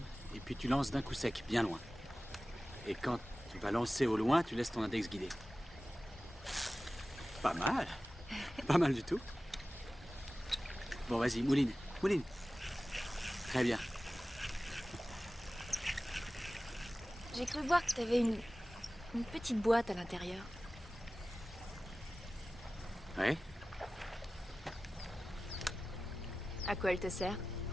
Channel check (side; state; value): both; normal; correlation 0.96